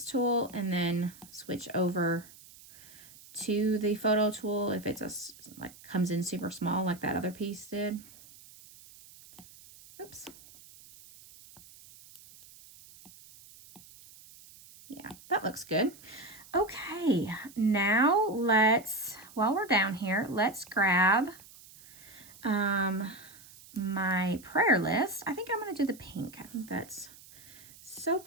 tool and then switch over to the photo tool if it's like comes in super small like that other piece did. Oops. Yeah, that looks good. Okay, now while we're down here, let's grab my prayer list. I think I'm going to do the pink. I think that's so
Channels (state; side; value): noise; right; hiss, 21 dB below the sound